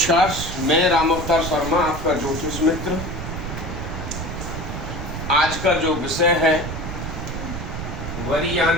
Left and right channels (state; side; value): noise; right; rumble, 6 dB below the sound